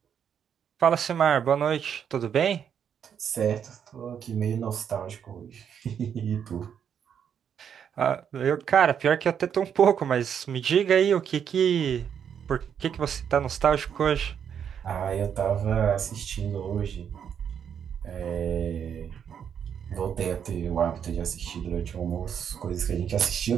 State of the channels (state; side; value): quieter; left; 8.1 dB